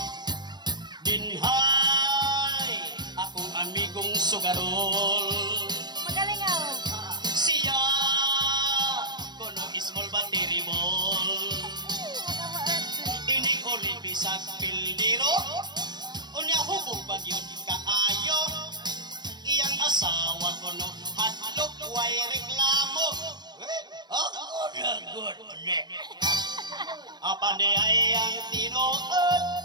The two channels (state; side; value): late; left; 0.21 ms